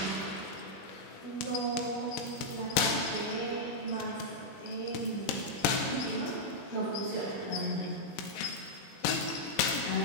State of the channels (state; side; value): late; right; 21 ms